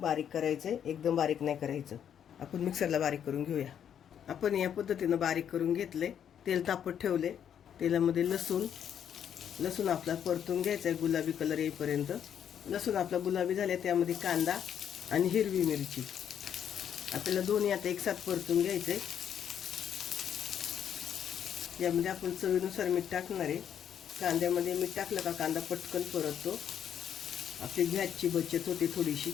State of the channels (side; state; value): right; quieter; 9.0 dB